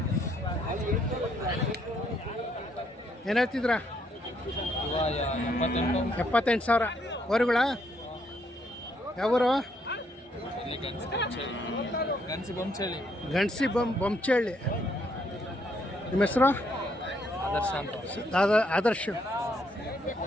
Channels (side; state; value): both; normal; correlation 0.72